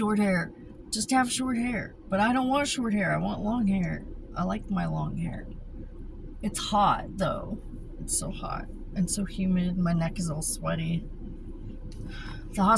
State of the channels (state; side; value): identical; both; correlation 1.00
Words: hair. Just have short hair. But I don't want short hair. I want long hair. I like my long hair. It's hot, though. It's so hot and so humid. My neck is all sweaty. The